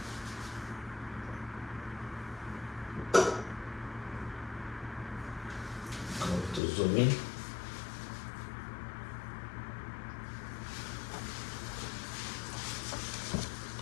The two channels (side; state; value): right; drops out; at 6.6 s